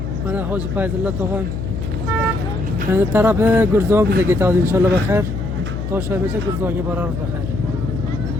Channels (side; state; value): left; noise; hum, 5 dB below the sound